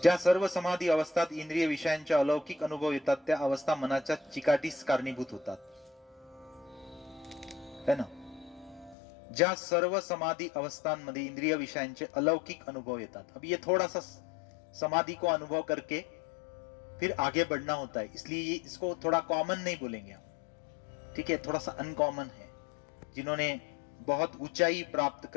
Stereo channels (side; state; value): right; drops out; at 9.0 s